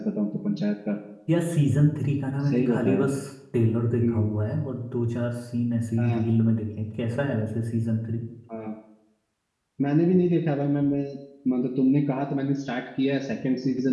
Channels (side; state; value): both; identical; correlation 1.00